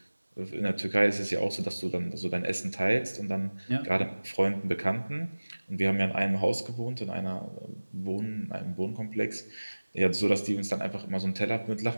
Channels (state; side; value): inverted; both; correlation -1.00